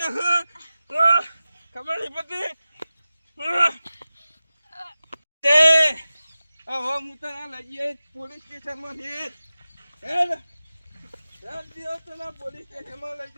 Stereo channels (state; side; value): inverted; both; correlation -0.95